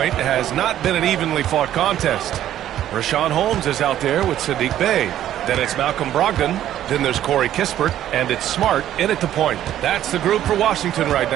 has not been an evenly fought contest. Richaun Holmes is out there with Saddiq Bey. Then it's Malcolm Brogdon. Then there's Corey Kispert, and it's Smart in at the point. That's the group for Washington right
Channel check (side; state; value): left; quieter; 11.9 dB